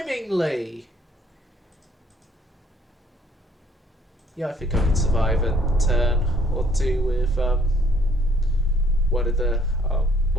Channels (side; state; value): both; normal; correlation 0.63